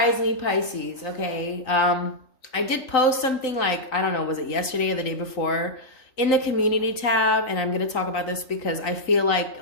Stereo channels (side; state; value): right; late; 3.9 ms